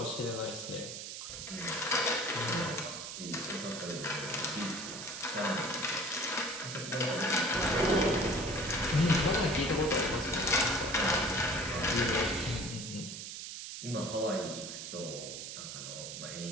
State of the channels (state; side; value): noise; right; hiss, 8 dB below the sound